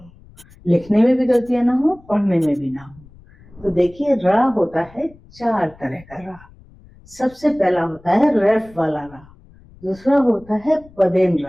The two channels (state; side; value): noise; left; rumble, 25 dB below the sound